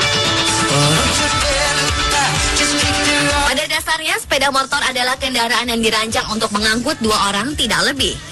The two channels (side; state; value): both; identical; correlation 1.00